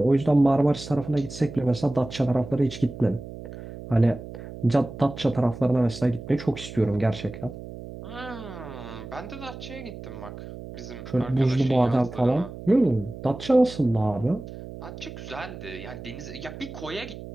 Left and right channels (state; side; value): noise; right; hum, 12 dB below the sound